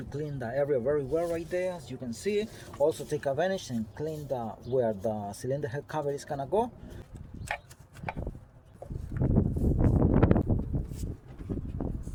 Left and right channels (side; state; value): both; identical; correlation 1.00